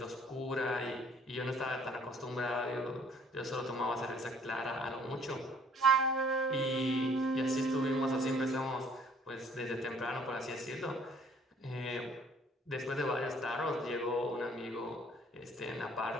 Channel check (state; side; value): normal; both; correlation 0.58